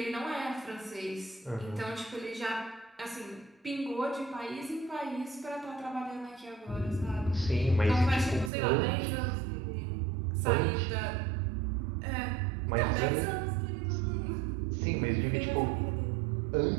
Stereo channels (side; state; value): left; drops out; at 8.5 s